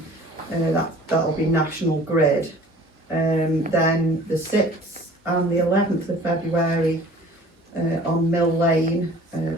that'll be National Grid. Then the 6th and the 11th of February on Mill Lane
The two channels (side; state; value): both; normal; correlation 0.48